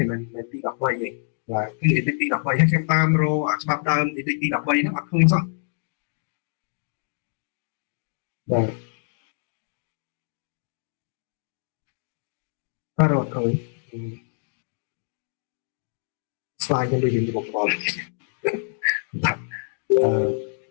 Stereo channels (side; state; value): right; silent; digital silence